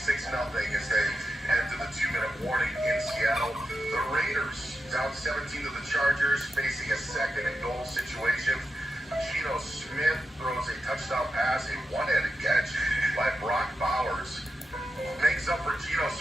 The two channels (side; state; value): both; normal; correlation 0.88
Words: as they head to the 2-minute warning in Seattle. The Raiders down 17 to the Chargers, facing a second and goal situation. Geno Smith throws a touchdown pass, a one-handed catch by Brock Bowers. Makes up for Geno